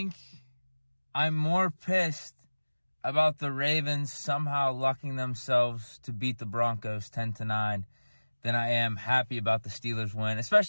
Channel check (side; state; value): both; inverted; correlation -1.00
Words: I'm more pissed about the Ravens somehow lucking themselves to beat the Broncos 10-9 than I am happy about the Steelers win,